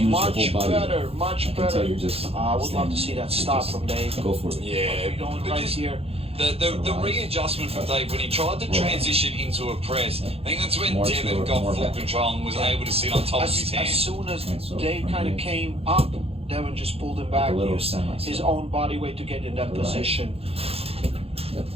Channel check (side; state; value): left; late; 0.29 ms